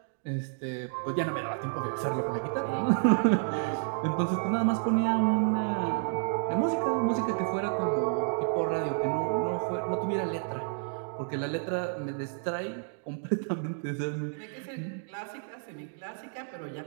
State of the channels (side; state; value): left; silent; 58 dB below the other